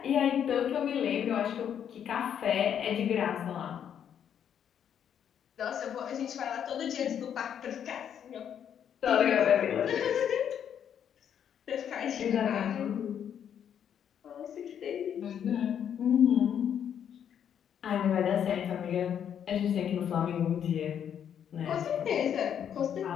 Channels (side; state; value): right; quieter; 8.9 dB